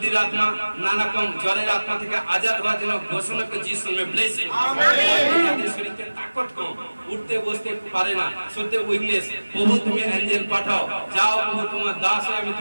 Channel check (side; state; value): both; inverted; correlation -1.00